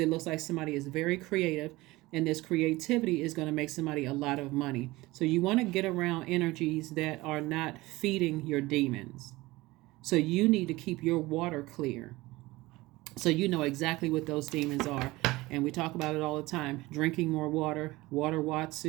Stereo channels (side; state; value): left; quieter; 20.0 dB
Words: looks like somebody is very creative, and this creativity is going to make somebody a lot of money. So you want to get around energies that are not feeding your demons. So you need to keep your water clear, so you know exactly what those demons are. And we talk about it all the time. Drinking more water, water